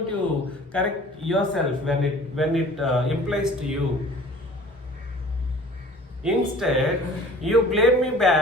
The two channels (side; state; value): both; normal; correlation 0.47